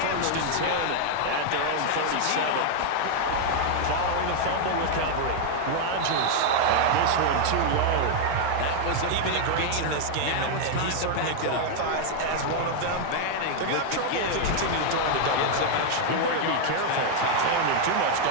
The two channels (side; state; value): both; different; correlation 0.00